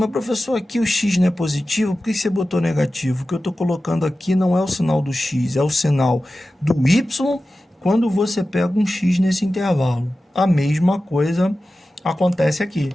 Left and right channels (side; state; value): both; normal; correlation 0.94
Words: professor, aqui o x não é positivo, por que você botou negativo? O que eu estou colocando aqui não é o sinal do x, é o sinal do y quando você pega um x nesse intervalo. A mesma coisa acontece aqui.